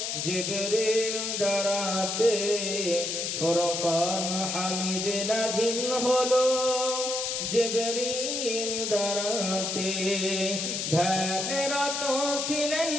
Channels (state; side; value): noise; left; hiss, 2 dB below the sound